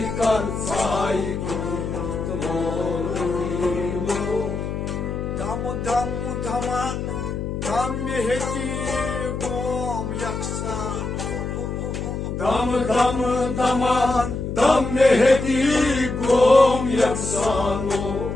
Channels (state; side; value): noise; left; hum, 4 dB below the sound